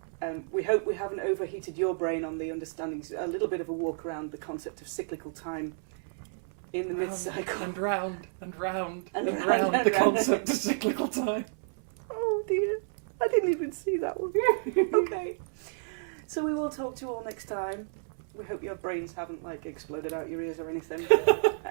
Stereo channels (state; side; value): silent; left; 57 dB below the other